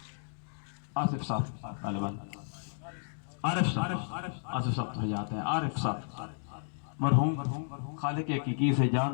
آصف صاحب طالبان، عارف صاحب، آصف صاحب تو حیات ہیں، عارف صاحب مرحوم خالق حقیقی سے جا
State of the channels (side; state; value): right; silent; digital silence